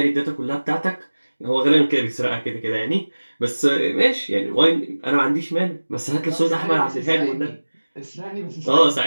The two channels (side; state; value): both; inverted; correlation -1.00